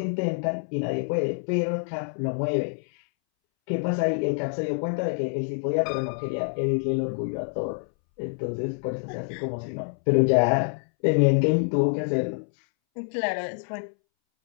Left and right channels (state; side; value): silent; right; 61 dB below the other